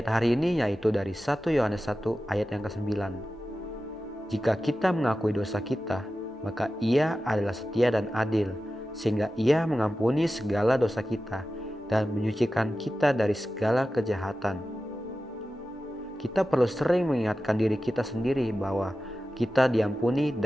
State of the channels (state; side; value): normal; both; correlation 0.94